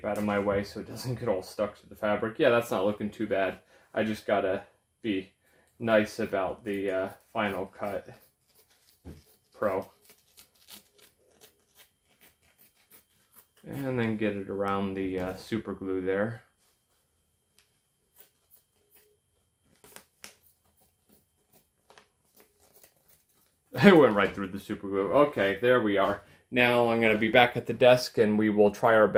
out of my way so it doesn't get all stuck to the fabric. Yeah, that's not looking too bad. I just gotta be nice about the final cut. Pro. And then get it around the super glue there. It went right through the super glue. Okay, there we are. Now I'm going to be back at the desk and we will try our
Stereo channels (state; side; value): identical; both; correlation 1.00